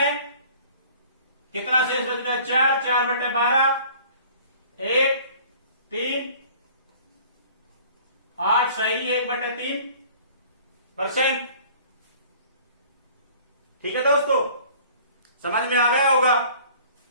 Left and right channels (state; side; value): inverted; both; correlation -0.50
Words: कितना शेष बच गया 4 4 बटे 12 1 3 8 सही 1/3%। ठीक है दोस्तों समझ में आ गया होगा।